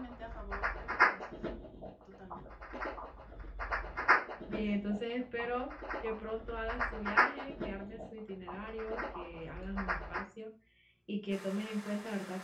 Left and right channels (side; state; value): both; identical; correlation 1.00